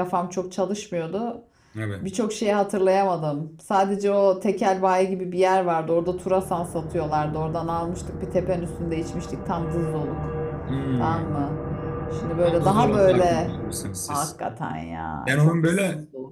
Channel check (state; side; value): identical; both; correlation 1.00